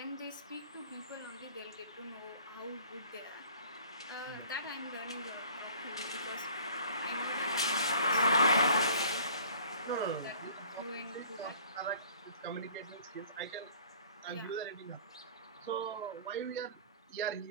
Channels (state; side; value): inverted; both; correlation -0.50